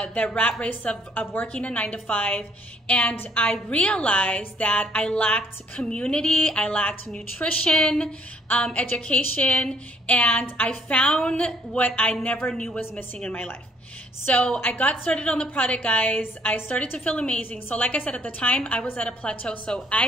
rat race of working a 9 to 5. And I realized that I lacked community, I lacked nutrition, education, and I found what I never knew was missing in my life. So I got started on the product, guys. I started to feel amazing. So like I said, at the time, I was at a plateau. So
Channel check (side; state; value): both; normal; correlation 0.63